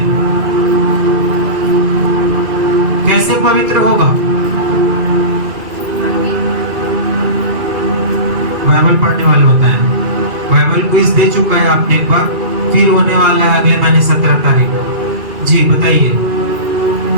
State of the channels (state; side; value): late; left; 2.3 ms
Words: कैसे पवित्र होगा? बाइबल पढ़ने वाले बताएं। बाइबल क्विज दे चुका है आपने एक बार, फिर होने वाला है अगले महीने 17 तारीख को। जी बताइए,